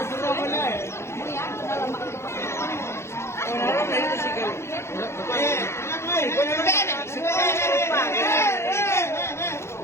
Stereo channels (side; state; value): right; late; 0.13 ms